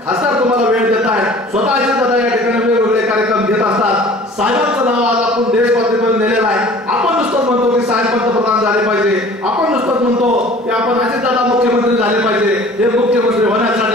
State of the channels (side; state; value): both; normal; correlation 0.47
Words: खासदार तुम्हाला वेळ देत आहे. स्वतःचे दादा या ठिकाणी वेगवेगळे कार्यक्रम घेत असतात. साहेबांचं नाव आज आपण देशपातळीवर नेलेलं आहे. आपण नुसतंच म्हणतो की साहेब पंतप्रधान झाले पाहिजे. आपण नुसतंच म्हणतो की आपण अजितदादा मुख्यमंत्री झाले पाहिजे. हे मुख्यमंत्री होण्यासाठी